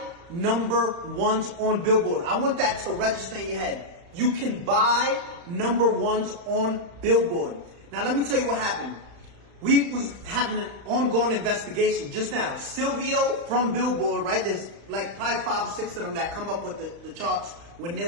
number ones on Billboard. I want that to register in your head. You can buy number ones on Billboard. Now let me tell you what happened. We was having an ongoing investigation just now. Silvio from Billboard, right? There's like probably 5 or 6 of them that come up with the charts with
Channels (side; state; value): left; late; 35 ms